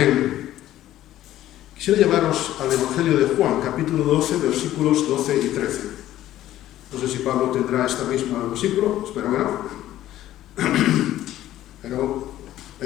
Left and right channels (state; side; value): quieter; right; 13.6 dB